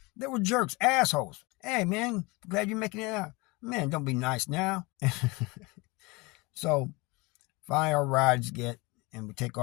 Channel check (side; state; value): right; quieter; 25.3 dB